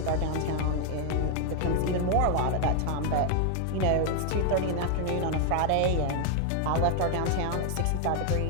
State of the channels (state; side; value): different; both; correlation 0.00